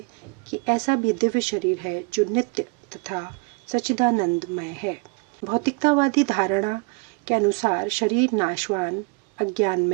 कि ऐसा भी दिव्य शरीर है जो नित्य तथा सच्चिदानंदमय है। भौतिकतावादी धारणा के अनुसार शरीर नाशवान,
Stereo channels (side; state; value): left; quieter; 30.9 dB